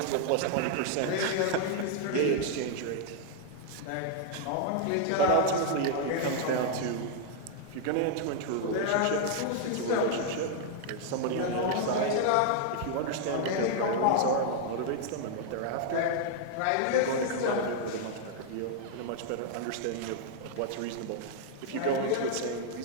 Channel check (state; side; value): different; both; correlation 0.00